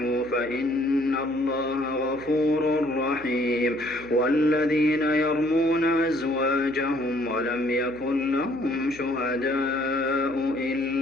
فإن الله غفور رحيم والذين يرمون أزواجهم ولم يكن لهم شهداء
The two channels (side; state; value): right; noise; hum, 21 dB below the sound